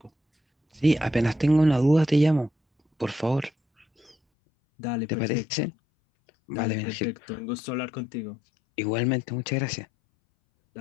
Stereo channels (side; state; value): right; drops out; at 4.2 s